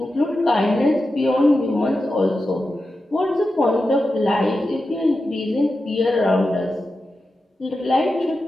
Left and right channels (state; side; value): normal; both; correlation 0.91